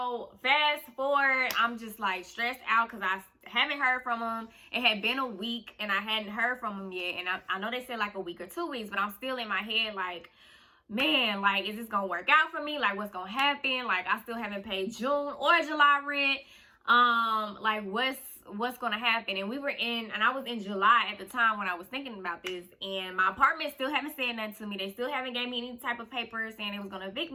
fast forward, I'm just like stressed out because I haven't heard from them. It had been a week and I hadn't heard from them yet. And I know they said like a week or 2 weeks, but I'm still in my head like, man, like, is this going to work out for me? Like, what's going to happen? Like, I still haven't paid June or July rent. Like, what's going to happen? And I was in July at the time when I was thinking about this. And my apartment still haven't said nothing to me. They still haven't gave me any type of paper saying it was going to evict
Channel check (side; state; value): both; identical; correlation 1.00